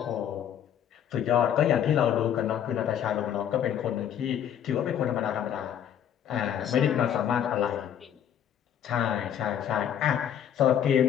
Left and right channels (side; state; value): right; quieter; 9.6 dB